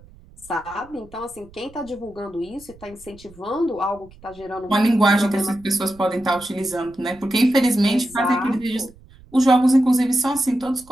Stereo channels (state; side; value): noise; right; rumble, 24 dB below the sound